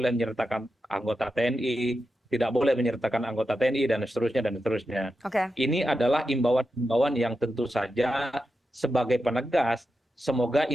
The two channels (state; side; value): normal; both; correlation 0.89